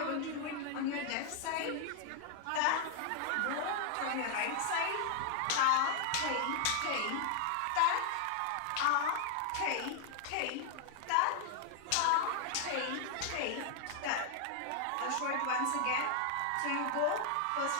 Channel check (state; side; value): different; both; correlation 0.00